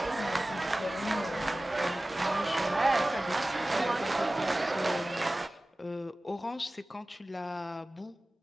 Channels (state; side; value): normal; both; correlation 0.97